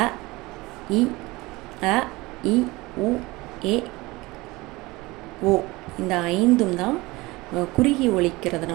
அ இ உ ஏ ஓ இந்த 5ம் தான் குறுகி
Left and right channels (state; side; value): quieter; left; 21.6 dB